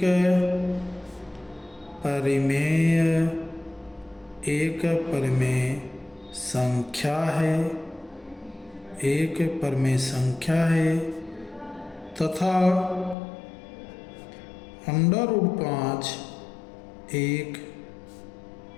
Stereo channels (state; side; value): drops out; right; at 13.2 s